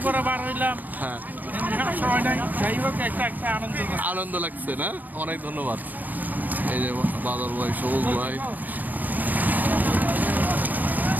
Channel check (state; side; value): late; left; 0.083 ms